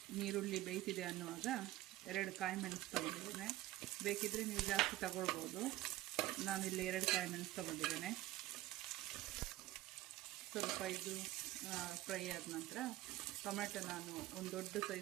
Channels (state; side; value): quieter; left; 16.2 dB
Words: ನೀರುಳ್ಳಿ ಬೇಯ್ತಿದೆ ಅನ್ನುವಾಗ 2 ಕಾಯಿ ಮೆಣಸು ತಗೊಂಡಿದ್ದೇನೆ. ಬೇಕಿದ್ದರೆ ನೀವು ಜಾಸ್ತಿ ತಗೊಳ್ಬೋದು. ನಾನಿಲ್ಲಿ 2 ಕಾಯಿ ಮೆಣಸು ತಗೊಂಡಿದ್ದೇನೆ. ಸ್ವಲ್ಪ ಇದು ಫ್ರೈ ಆದ ನಂತರ ಟೊಮೆಟೊ, ನಾನು ಒಂದು ದೊಡ್ಡ